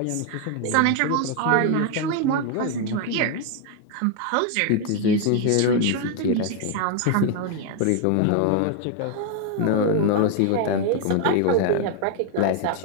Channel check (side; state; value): both; different; correlation 0.00